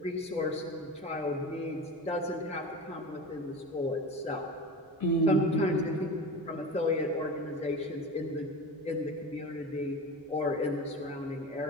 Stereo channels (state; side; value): normal; both; correlation 0.30